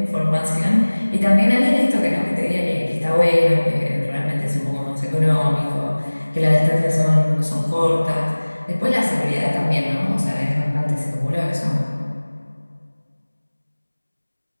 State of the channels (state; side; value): inverted; both; correlation -1.00